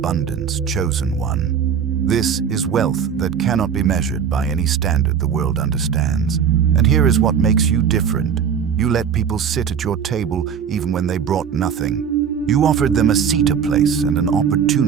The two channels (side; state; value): left; quieter; 7.6 dB